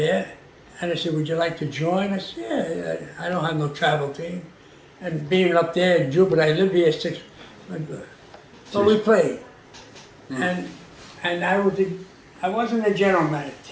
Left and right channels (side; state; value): both; identical; correlation 1.00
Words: and I said, would you like to join? I said, yeah, I don't have no travel team. And being up there in Jupiter, I live here 6 months. So we played. And I wasn't a general manager.